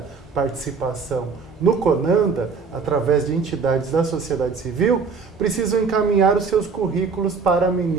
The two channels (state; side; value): quieter; left; 5.1 dB